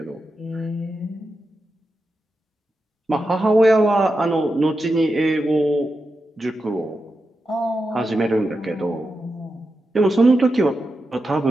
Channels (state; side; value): normal; both; correlation 0.89